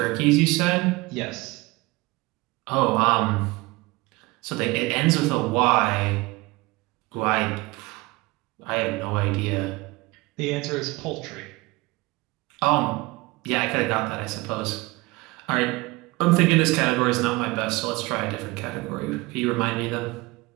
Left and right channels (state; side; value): quieter; left; 22.8 dB